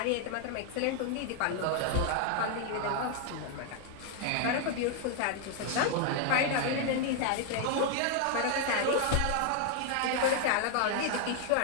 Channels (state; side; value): different; both; correlation 0.00